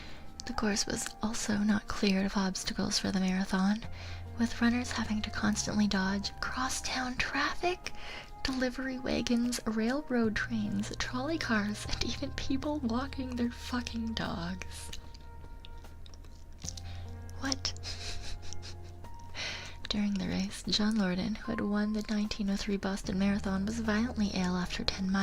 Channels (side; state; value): both; identical; correlation 1.00